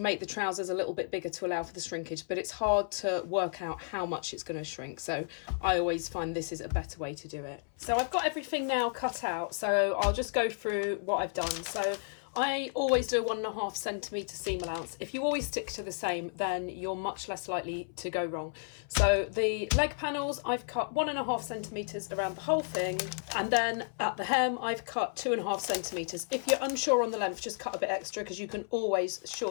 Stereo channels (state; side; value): silent; right; 56 dB below the other